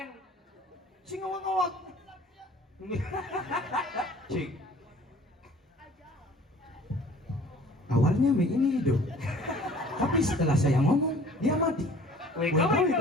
Sing ngawak-ngawak. Cik. Awalnya Mei ini hidup. Tapi setelah saya ngomong, dia mati.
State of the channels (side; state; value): both; normal; correlation 0.50